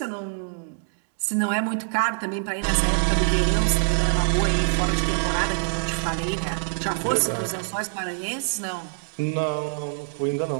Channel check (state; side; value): silent; left; 62 dB below the other